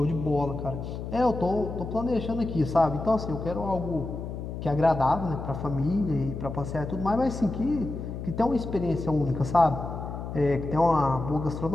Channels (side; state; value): left; noise; hum, 7 dB below the sound